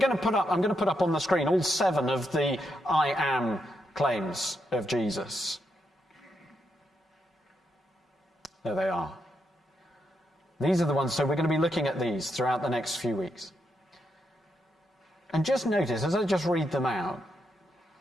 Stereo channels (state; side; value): normal; both; correlation 0.81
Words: to put up on the screen all 7 of the I am claims of Jesus. There they are. These are the ones, so we're going to be looking at these throughout the next few weeks. And just notice, as I just read them out,